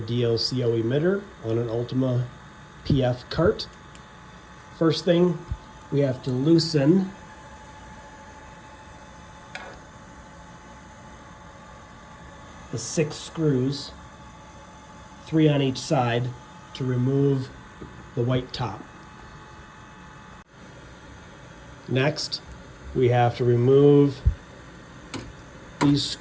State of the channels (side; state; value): both; identical; correlation 1.00